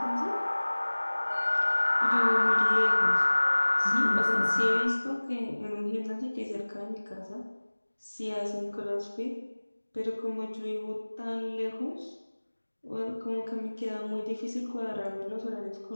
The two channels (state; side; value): inverted; both; correlation -1.00